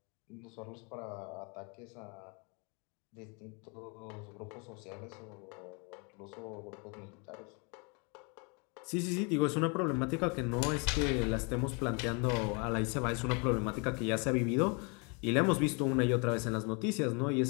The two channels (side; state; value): right; quieter; 33.1 dB